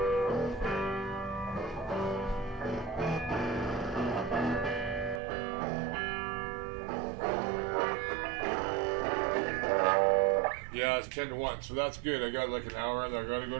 Yeah, it's 10 to 1, so that's good. I got like an hour and I gotta go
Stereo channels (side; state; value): left; drops out; at 5.2 s